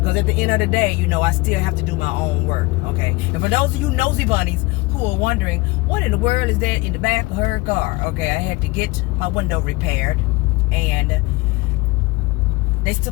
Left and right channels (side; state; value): right; quieter; 23.0 dB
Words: at the end of the day, you know, I still have to do my own work, okay? And for those of you nosy bunnies who are wondering, what in the world is there in the back of her car? Okay, I had to get my window repaired, and they